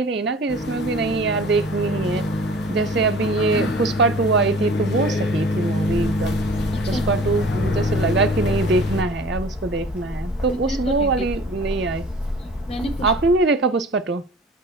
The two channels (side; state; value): both; normal; correlation 0.45